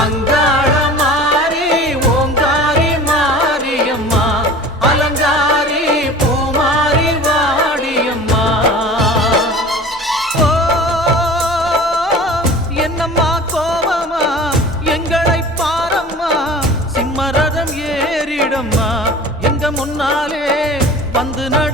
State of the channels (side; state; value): both; normal; correlation 0.40